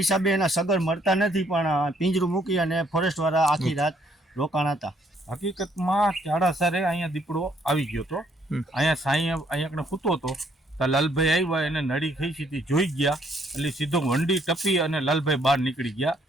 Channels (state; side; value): normal; both; correlation 0.67